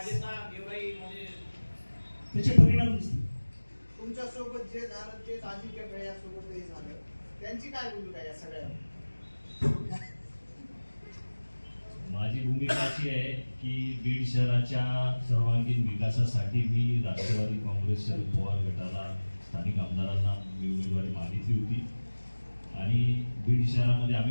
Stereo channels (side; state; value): both; inverted; correlation -1.00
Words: त्याचे परिणाम दिसतील. तुमच्या सोबत जे झालं ते अजिंक्य भैयासोबतही झालं, त्यांची काय भूमिका या सगळ्या? माझी भूमिका अशी आहे की बीड शहराच्या सर्वांगीण विकासासाठी मी राष्ट्रवादी काँग्रेस शरद पवार गटाला स्थानिक आमदारांना मी उमेदवारी मागितली होती. आणि बीड शहरामध्ये